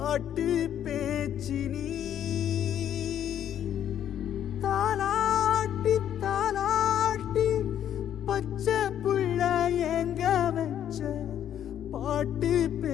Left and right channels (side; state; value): right; quieter; 10.2 dB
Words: தாலாட்டி தாலாட்டி பச்சை புள்ள எங்க வச்ச